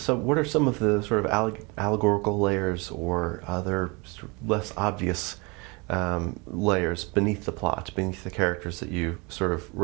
of allegorical layers or other sort of less obvious layers beneath the plot, beneath the characters that you sort of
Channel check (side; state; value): left; quieter; 28.4 dB